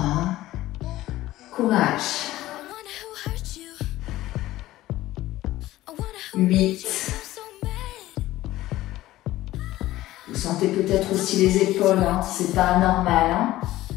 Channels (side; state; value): right; quieter; 15.9 dB